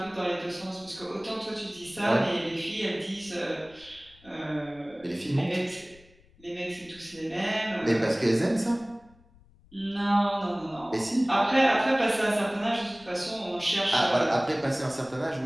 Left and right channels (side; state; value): left; noise; rumble, 27 dB below the sound